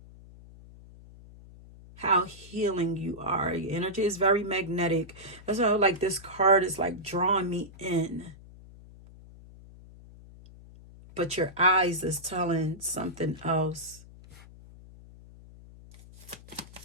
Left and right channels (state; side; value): noise; left; hum, 20 dB below the sound